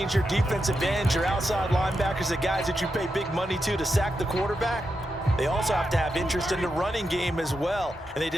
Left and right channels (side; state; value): both; normal; correlation 0.86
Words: your defensive ends, your outside linebackers, the guys that you pay big money to sack the quarterback, they also have to have interest in the running game as well. And they